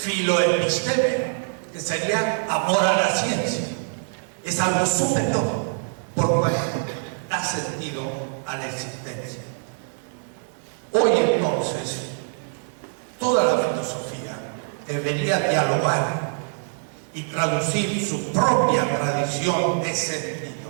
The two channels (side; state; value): left; silent; digital silence